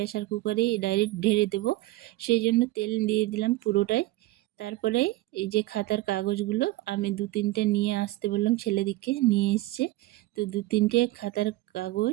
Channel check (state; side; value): quieter; left; 18.4 dB